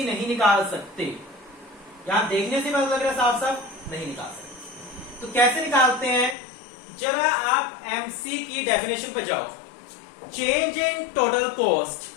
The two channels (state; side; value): drops out; right; at 6.4 s